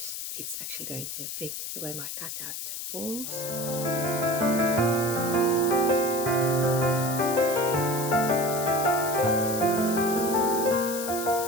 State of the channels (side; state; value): left; noise; hiss, 6 dB below the sound